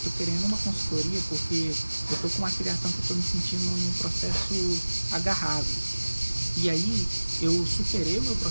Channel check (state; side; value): inverted; both; correlation -1.00